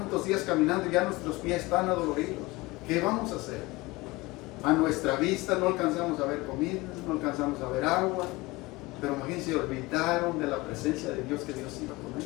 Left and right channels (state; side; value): quieter; right; 21.7 dB